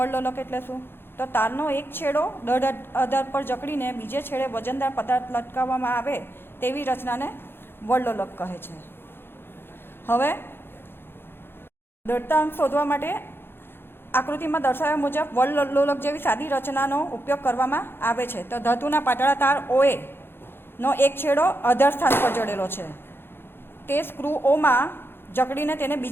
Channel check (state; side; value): late; right; 0.11 ms